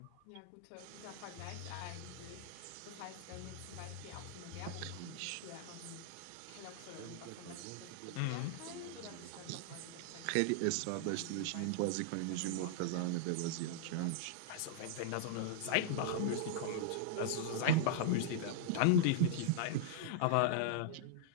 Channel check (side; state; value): both; different; correlation -0.01